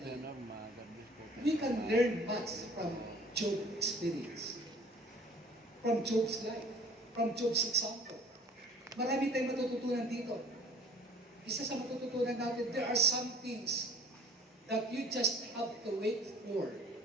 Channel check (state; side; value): normal; both; correlation 0.50